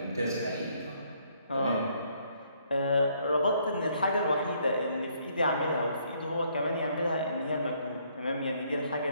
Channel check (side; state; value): both; inverted; correlation -0.68